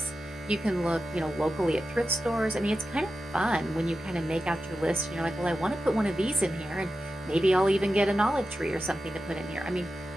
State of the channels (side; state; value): both; normal; correlation 0.91